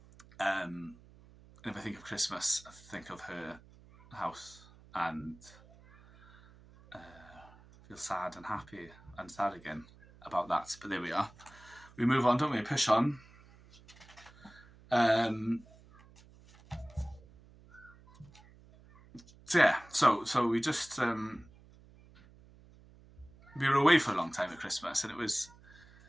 And if I think of Christmas, I think of her house and feel sad and happy and sad again about that. But there we are. We move on, don't we? Push on. So yeah, so we just we were away for a long time at Christmas, and it was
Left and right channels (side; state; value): right; noise; hum, 24 dB below the sound